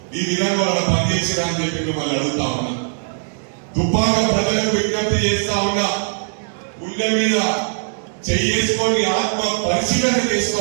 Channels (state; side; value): silent; left; digital silence